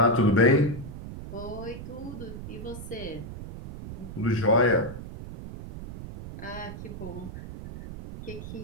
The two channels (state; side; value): noise; right; rumble, 10 dB below the sound